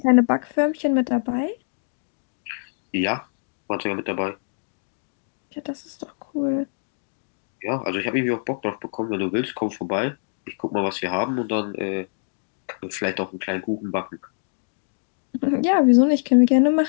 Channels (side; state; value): right; silent; digital silence